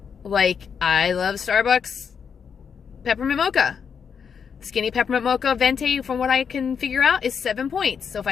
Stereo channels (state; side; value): quieter; right; 6.8 dB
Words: Like I love Starbucks peppermint mocha. Skinny peppermint mocha venti, from what I can figure out, is 7 points. So if